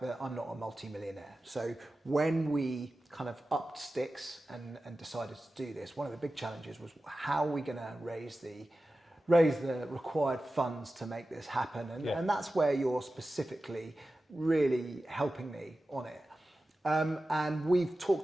that I'm not a multi-millionaire. So when we kind of upped sticks and decided to do this, one of the big challenges was how are we going to raise the required funds to make this happen? And that's where you're specifically really helping me on it. And we've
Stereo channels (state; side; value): normal; both; correlation 0.94